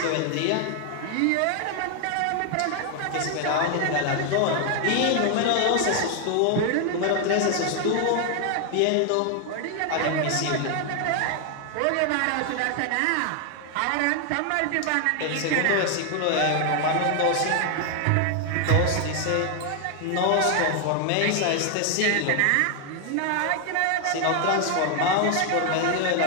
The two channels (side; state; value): both; different; correlation 0.00